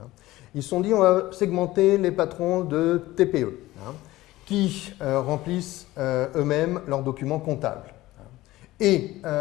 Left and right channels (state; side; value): quieter; right; 17.4 dB